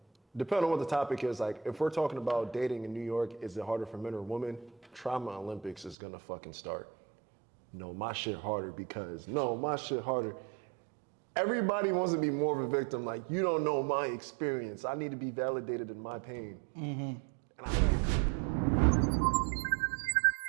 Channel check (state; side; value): drops out; left; at 6.0 s